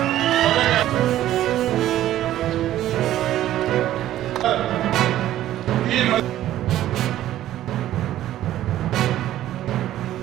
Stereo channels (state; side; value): quieter; left; 13.2 dB